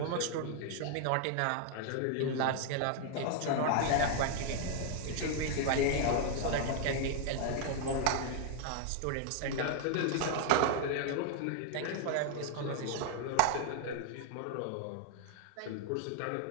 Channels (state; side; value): different; both; correlation 0.00